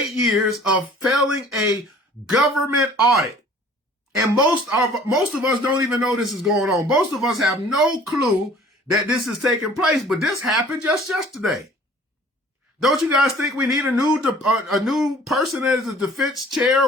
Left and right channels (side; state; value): both; normal; correlation 0.51